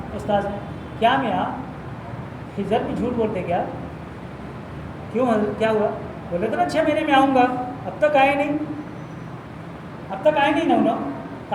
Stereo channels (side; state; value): both; identical; correlation 1.00